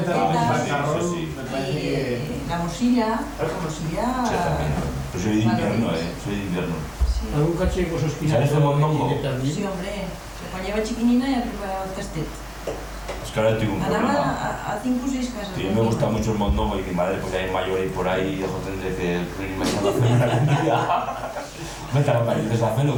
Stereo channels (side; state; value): both; identical; correlation 1.00